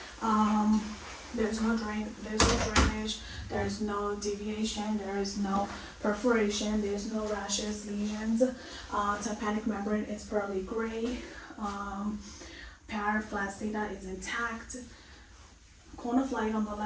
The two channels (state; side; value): identical; both; correlation 1.00